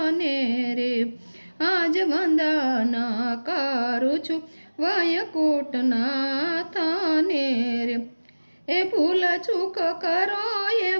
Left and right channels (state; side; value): inverted; both; correlation -1.00